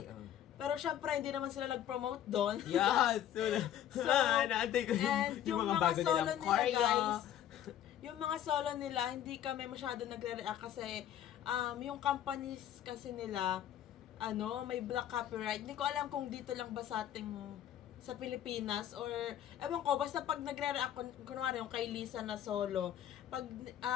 pero syempre, hindi naman sila nag-promote doon. Yes! So, naantay ko and yung mga bago solo nilang nila, choreo. guys, yung mga solo nila, hindi kami masyado nagre-react kasi yung companies kasi nila, may black copyright. Hindi ko alam kung dito lang ba sa ating sa Pilipinas or ewan ko, basta pag nagre-react kunwari yung kay Lisa na solo, pag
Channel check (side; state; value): right; quieter; 11.0 dB